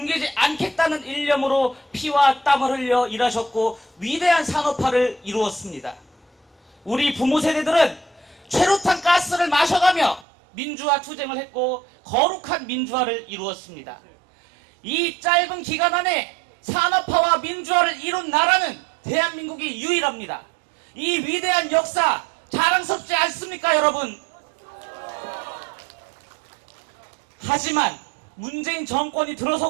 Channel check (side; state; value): left; drops out; at 10.2 s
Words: 않겠다는 일념으로 피와 땀을 흘려 일하셨고 위대한 산업화를 이루었습니다. 우리 부모 세대들은 최루탄 가스를 마셔가며 민주화 투쟁을 했고 거룩한 민주화를 이루었습니다. 이 짧은 기간 안에 산업화와 민주화를 이룬 나라는 대한민국이 유일합니다. 이 위대한 역사 자랑스럽지 않습니까, 여러분? 하지만 문재인 정권이